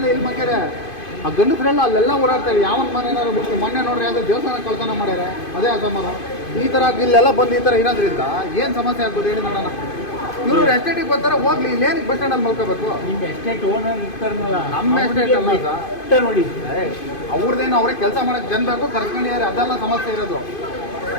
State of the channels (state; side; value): late; right; 2.5 ms